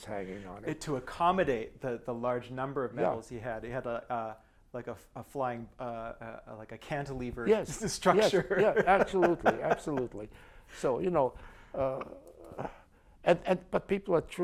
hanging on it. To accommodate the large number of medals he had. He had like a flying, like a cantilever structure. Yes, yeah, absolutely, absolutely. So, But people are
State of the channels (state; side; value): identical; both; correlation 1.00